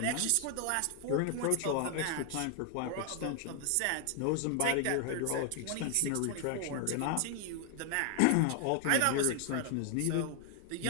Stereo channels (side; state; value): both; different; correlation 0.00